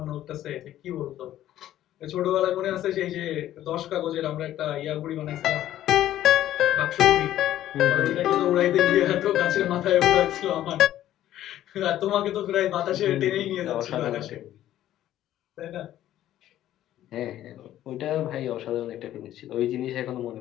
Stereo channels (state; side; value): quieter; right; 12.8 dB